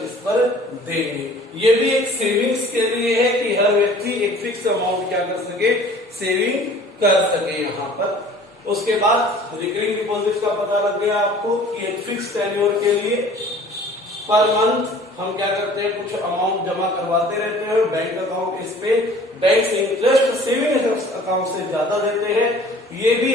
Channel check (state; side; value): normal; both; correlation 0.49